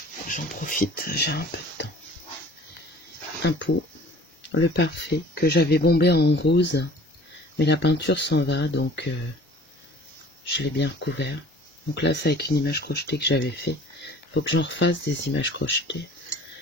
J'en profite, j'ai un peu de temps. Un pot, le parfait, que j'avais bombé en rose, mais la peinture s'en va, donc je l'ai bien recouvert. Donc là, c'est avec une image crochetée que j'avais fait. Il faut que j'en refasse des images crochetées.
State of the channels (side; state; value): both; normal; correlation 0.48